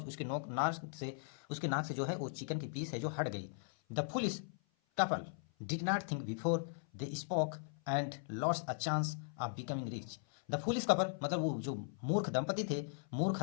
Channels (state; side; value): silent; right; 52 dB below the other